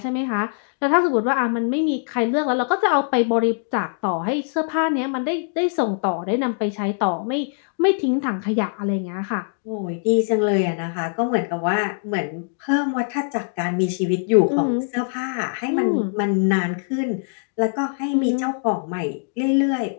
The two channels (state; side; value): silent; right; digital silence